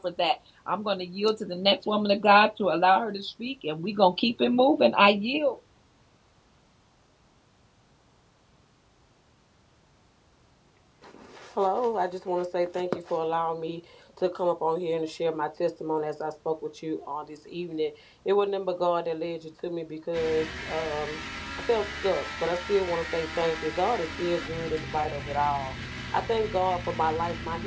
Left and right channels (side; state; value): both; identical; correlation 1.00